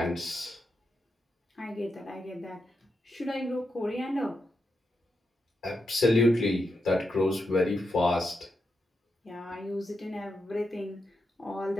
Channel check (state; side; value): normal; both; correlation 0.85